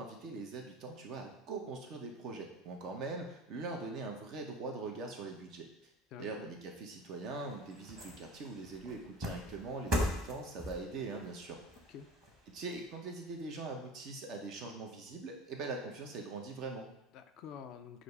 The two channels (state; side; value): normal; both; correlation 0.37